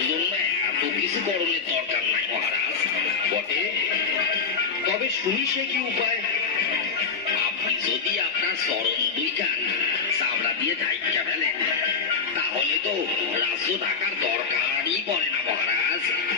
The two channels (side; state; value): right; quieter; 5.2 dB